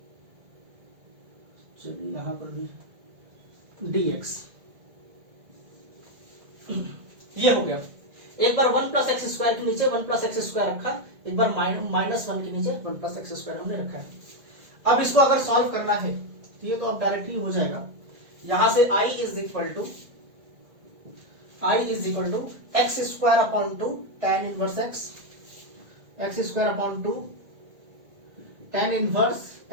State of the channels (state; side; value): late; left; 2.0 ms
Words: चलिए यहां पर भी dx, ये हो गया। एक बार 1 प्लस एक्स स्क्वायर के नीचे 1 प्लस एक्स स्क्वायर रखा, एक बार -1 के नीचे 1 प्लस एक्स स्क्वायर हमने रखा है। अब इसको अगर सॉल्व करना है तो ये तो अब डायरेक्टली हो जाएगा, यहां से I is equal to X square upon 2 tan inverse X square upon 2 tan inverse